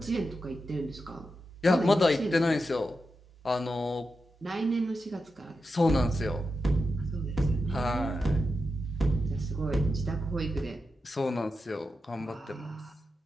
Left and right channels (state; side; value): normal; both; correlation 0.89